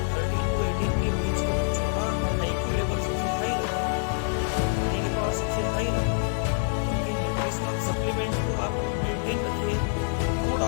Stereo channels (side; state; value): right; silent; digital silence